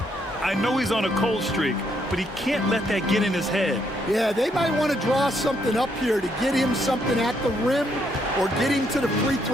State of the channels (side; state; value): both; normal; correlation 0.74